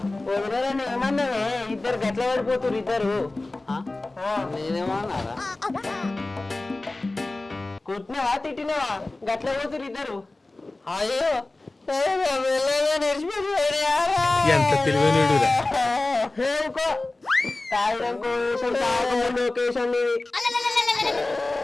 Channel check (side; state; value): right; quieter; 3.0 dB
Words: ఏమన్నావే ఇద్దరు గట్ల పడిపోతురు ఇద్దరు నేనేమన్నారా కొట్టినావా తిట్టినావా గట్ల పోతురు ఇద్దరు అయ్యో ఎంత తెలివైనడురా